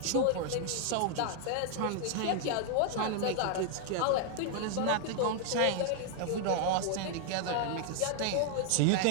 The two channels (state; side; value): different; both; correlation 0.00